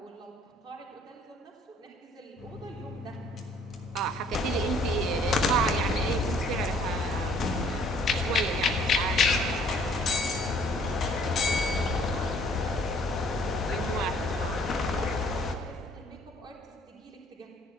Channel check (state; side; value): normal; both; correlation 0.60